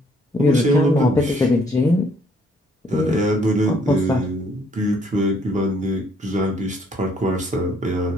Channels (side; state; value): both; normal; correlation 0.65